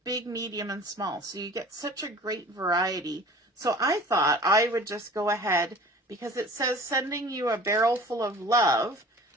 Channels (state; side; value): normal; both; correlation 0.43